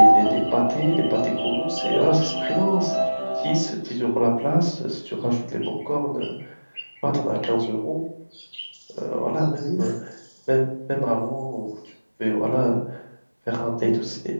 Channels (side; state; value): both; inverted; correlation -1.00